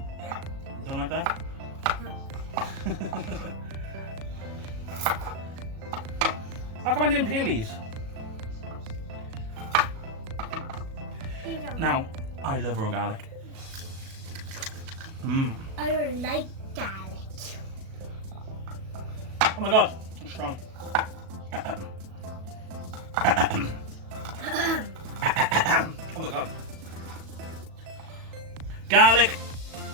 You don't like that? No. How come I didn't peel these? You don't. Now, I love raw garlic. Mmm. I don't like garlic. Oh my god, it's strong. Oh my god. Garlic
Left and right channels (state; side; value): late; left; 37 ms